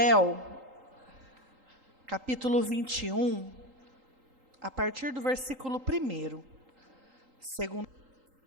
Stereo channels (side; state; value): left; late; 3.8 ms